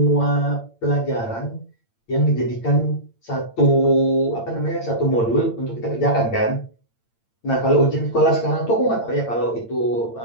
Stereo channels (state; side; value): late; right; 8.8 ms